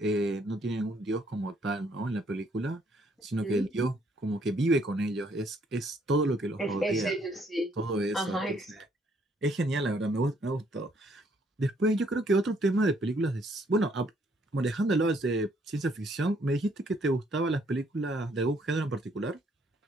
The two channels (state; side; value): normal; both; correlation 0.67